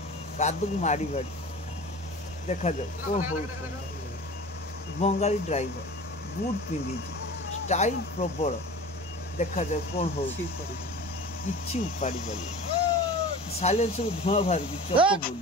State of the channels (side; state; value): both; normal; correlation 0.38